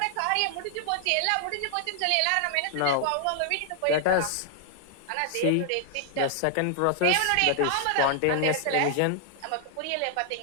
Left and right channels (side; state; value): both; different; correlation 0.00